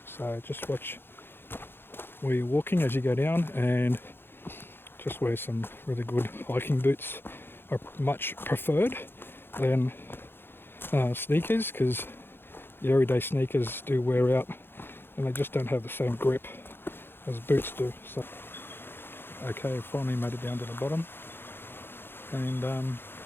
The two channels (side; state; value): right; late; 0.10 ms